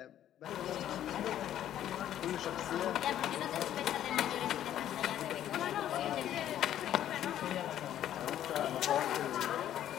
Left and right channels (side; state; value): right; quieter; 11.4 dB